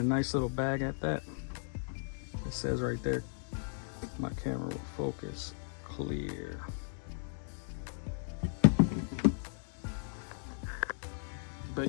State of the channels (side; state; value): right; silent; digital silence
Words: nice little bag at that. It says right there, my camera will focus, clear.